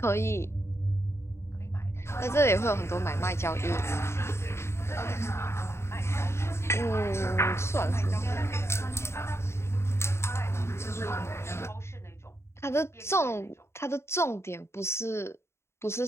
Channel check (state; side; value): late; right; 0.13 ms